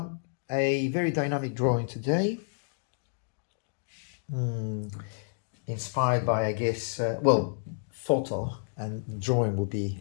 A very dynamic drawing today. Inspired by, I guess, photo and drawing will be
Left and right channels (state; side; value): silent; right; digital silence